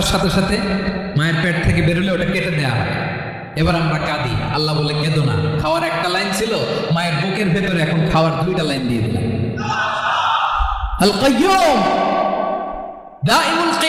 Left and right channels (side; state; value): both; identical; correlation 1.00